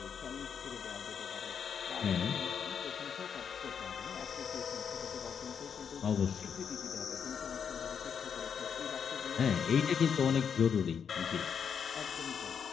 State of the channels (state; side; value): quieter; right; 7.2 dB